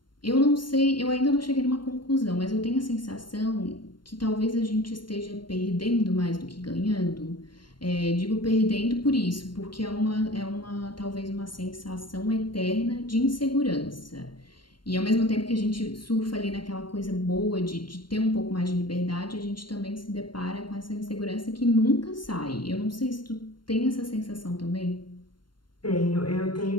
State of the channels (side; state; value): right; late; 0.72 ms